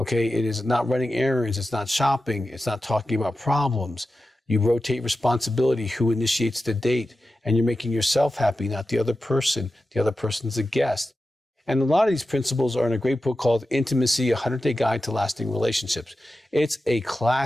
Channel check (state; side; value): normal; both; correlation 0.92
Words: It is not running errands. It's not shopping. It's not talking about problems. You rotate responsibility, who initiates the date, and you're making yourself happy, not the other person. The other person's a guest. And a lot of these principles are in a great book called Intimacy, a 100-Day Guide to Lasting Relationships. It's a